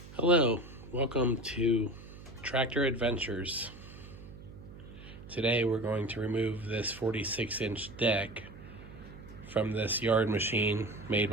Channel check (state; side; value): noise; right; hum, 16 dB below the sound